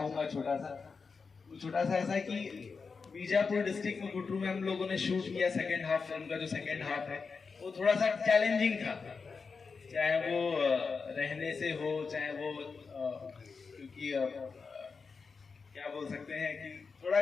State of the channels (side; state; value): right; quieter; 5.0 dB